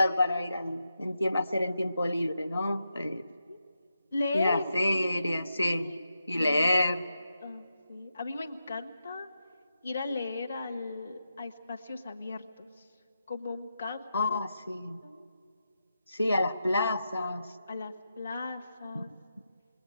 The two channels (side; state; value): both; inverted; correlation -0.87